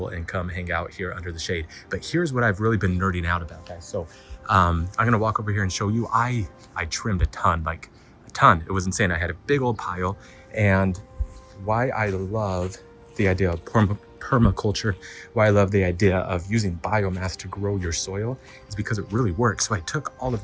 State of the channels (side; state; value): both; identical; correlation 1.00